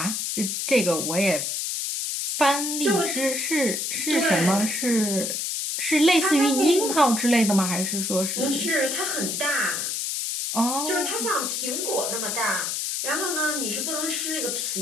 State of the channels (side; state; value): left; noise; hiss, 1 dB below the sound